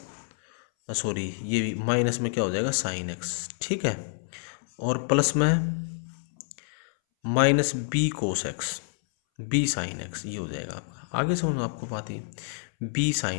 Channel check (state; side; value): silent; right; 59 dB below the other